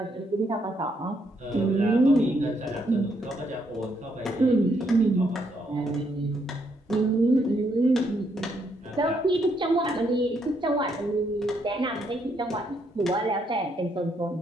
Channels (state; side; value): normal; both; correlation 0.74